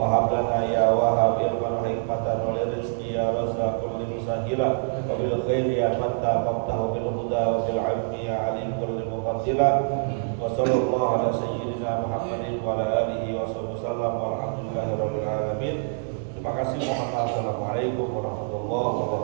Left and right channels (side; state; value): left; silent; 61 dB below the other